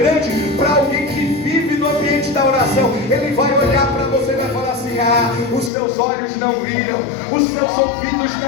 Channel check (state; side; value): drops out; right; at 5.7 s